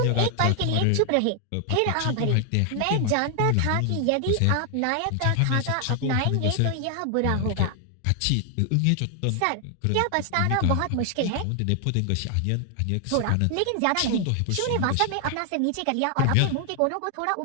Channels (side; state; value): both; different; correlation 0.00